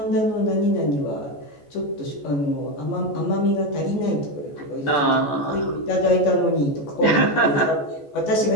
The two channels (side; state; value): right; late; 14 ms